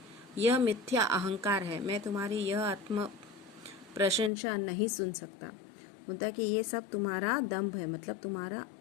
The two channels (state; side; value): drops out; right; at 4.3 s